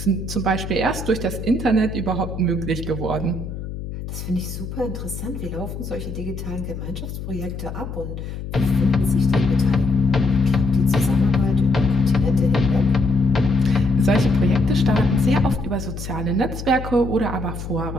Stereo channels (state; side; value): noise; left; hum, 8 dB below the sound